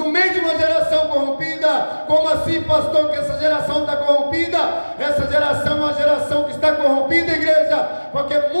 meio de uma geração corrompida. Como assim, pastor, que essa geração está corrompida? Essa geração é uma geração que está corrompida, igreja, porque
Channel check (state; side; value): inverted; both; correlation -1.00